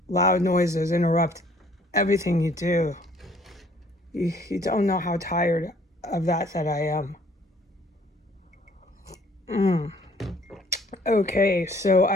loud noises interrupt everything you do. You don't know how tired of that I am. Okay, so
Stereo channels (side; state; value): both; normal; correlation 0.59